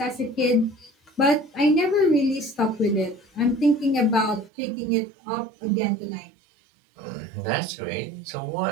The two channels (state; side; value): drops out; left; at 4.5 s